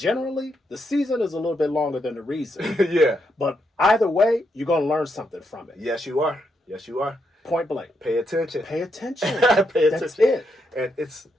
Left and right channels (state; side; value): normal; both; correlation 0.80